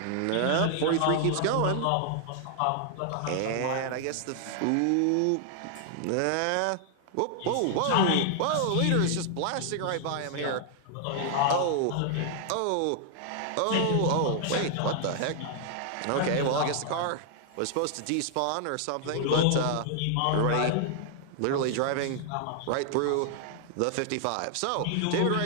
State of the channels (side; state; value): both; different; correlation 0.00